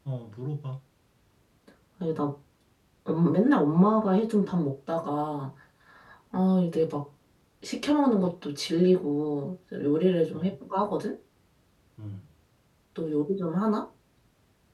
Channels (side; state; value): both; identical; correlation 1.00